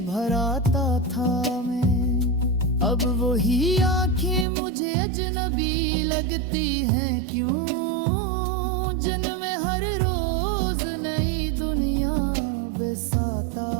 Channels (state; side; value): drops out; left; at 4.5 s